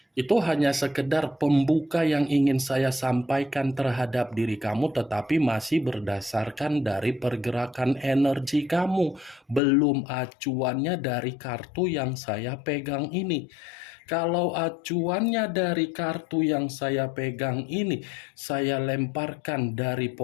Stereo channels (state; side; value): drops out; right; at 9.6 s